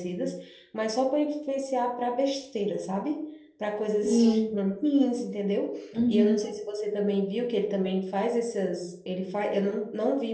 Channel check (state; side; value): identical; both; correlation 1.00